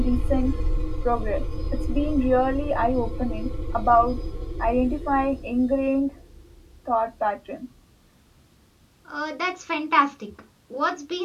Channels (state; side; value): identical; both; correlation 1.00